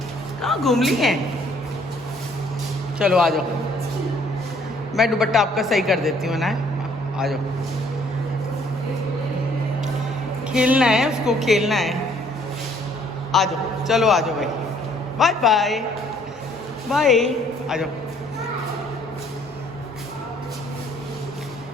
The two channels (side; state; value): both; normal; correlation 0.62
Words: कहाँ घूम ली हैं? चलो आ जाओ, मैं दुपट्टा आपका सही कर देती हूँ ना। आ जाओ, खेलना है उसको, खेलना है। आ जाओ, चलो आ जाओ भाई, बाय बाय बाय, आ जाओ।